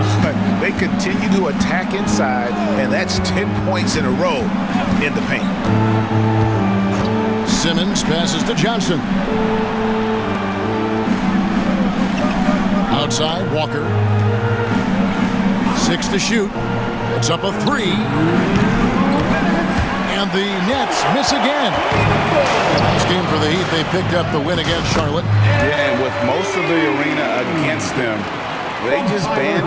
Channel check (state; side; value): identical; both; correlation 1.00